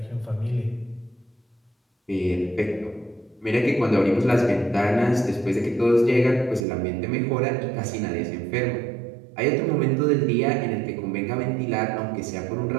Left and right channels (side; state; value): left; drops out; at 6.7 s